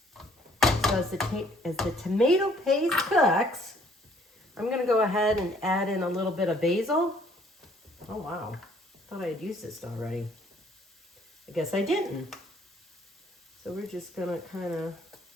So as the tomato paste cooks, I'm going to go ahead and add in a little bit of basil. Oh wow, thought I had used this already. I guess I didn't. So we're just going to kind of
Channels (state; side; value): normal; both; correlation 0.61